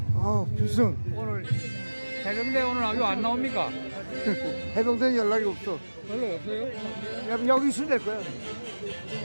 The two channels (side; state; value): both; inverted; correlation -1.00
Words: 필승. 오늘 해병대 오늘 아주 안 나옵니까? 해병대 연락이 없어. 연락 없어요? 여기 있으면 될 거야.